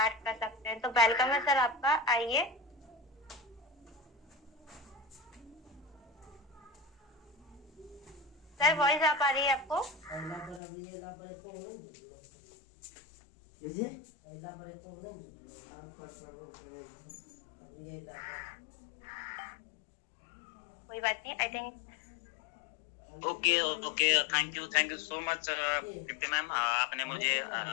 कर सकते हैं। तो वेलकम है सर आपका, आइए। सर वॉइस आ पा रही है आपको? कोई बात नहीं, I think. Okay, thank you so much Preeti ma'am, आपने मुझे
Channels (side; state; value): right; drops out; at 10.6 s